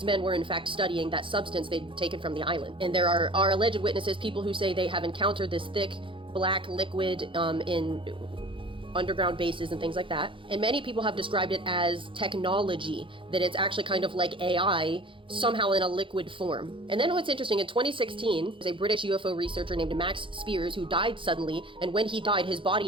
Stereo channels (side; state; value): left; late; 0.25 ms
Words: men were in fact studying that substance they'd taken from the island. And there are alleged witnesses, people who say they have encountered this thick black liquid in underground bases and things like that. And many people have described it as technology, that it's actually kind of like AI, somehow in a liquid form. And then what's interesting, in 2016, there's a British UFO researcher named Max Spears who died suddenly, and when he died, his